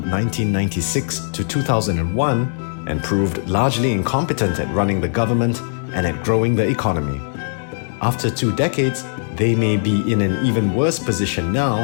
1996 to 2001 and proved largely incompetent at running the government and at growing the economy. After 2 decades, they may be in an even worse position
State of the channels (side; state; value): right; silent; 66 dB below the other